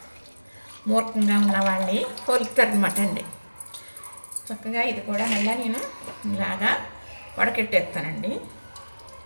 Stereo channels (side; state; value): both; inverted; correlation -1.00